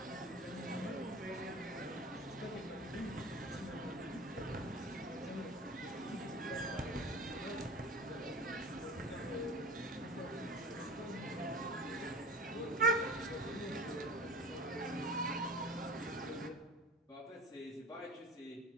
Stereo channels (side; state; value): both; normal; correlation 0.37